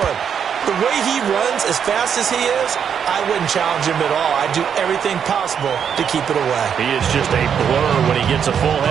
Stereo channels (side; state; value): left; quieter; 7.8 dB